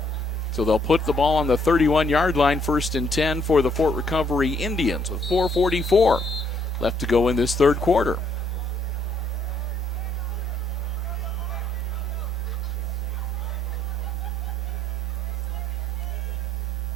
So they'll put the ball on the 31-yard line, 1st and 10 for the Fort Recovery Indians with 4:44 left to go in this third quarter.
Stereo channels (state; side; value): normal; both; correlation 0.68